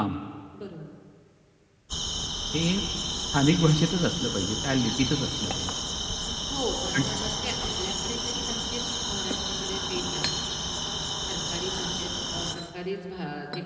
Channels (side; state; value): both; identical; correlation 1.00